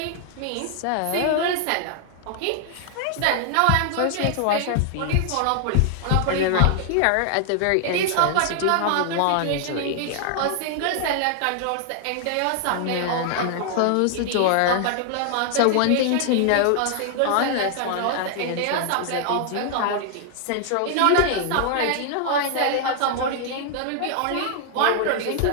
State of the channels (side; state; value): both; different; correlation 0.00